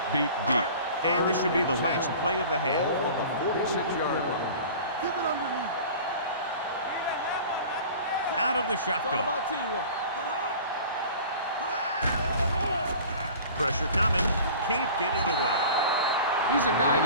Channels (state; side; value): inverted; both; correlation -0.41